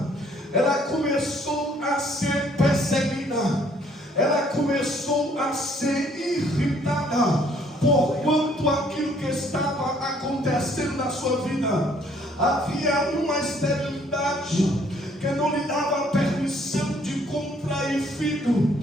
ela começou a ser perseguida, ela começou a ser irritada, porquanto aquilo que estava acontecendo na sua vida, havia uma esterilidade que não lhe dava permissão de contrair filho.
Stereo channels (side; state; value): both; normal; correlation 0.63